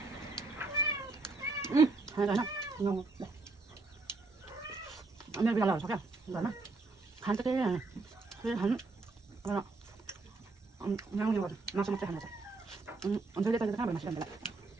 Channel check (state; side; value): quieter; left; 3.6 dB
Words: Enak. Ngon. Ini biar lalu sakit. Enggak mah. Han cái này. Cái hắn nó ngang như vậy. Nó xong cái hắn này. Ông thấy cái cái masih ada.